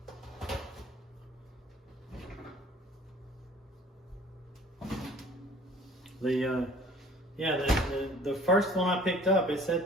The first one I picked up, it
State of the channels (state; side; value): normal; both; correlation 0.51